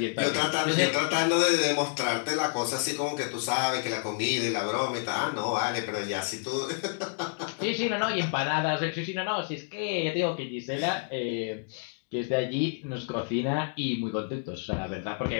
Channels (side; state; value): right; silent; 59 dB below the other